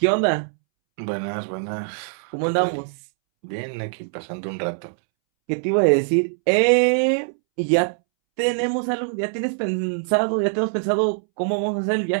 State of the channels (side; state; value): left; silent; 64 dB below the other